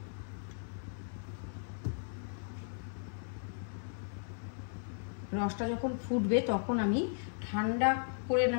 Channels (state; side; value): silent; right; 54 dB below the other